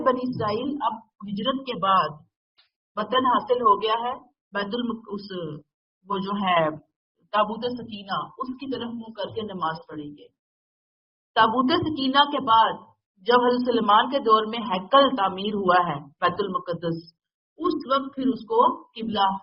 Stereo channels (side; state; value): both; identical; correlation 1.00